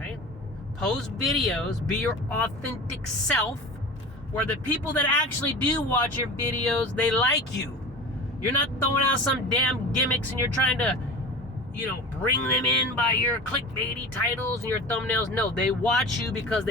Post videos, be your authentic self, where the people that actually do watch your videos, they like you. You're not throwing out some damn gimmicks and you're trying to, bring them in by your clickbaity titles and your thumbnails. No, they watch you because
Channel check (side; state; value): both; normal; correlation 0.34